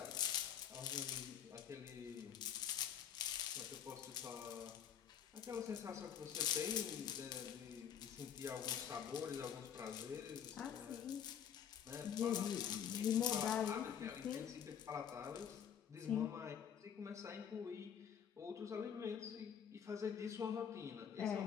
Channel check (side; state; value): right; quieter; 8.5 dB